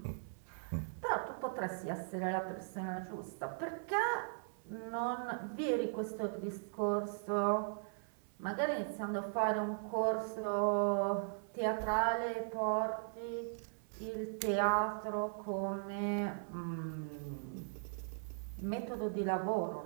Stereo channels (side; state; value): left; silent; 52 dB below the other